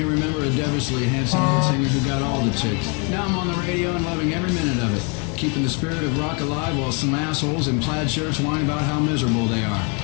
remember a devilishly handsome lead singer who got all the chicks. Now I'm on the radio and loving every minute of it, keeping the spirit of rock alive while some assholes in plaid shirts whine about how miserable they are.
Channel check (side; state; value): right; quieter; 32.9 dB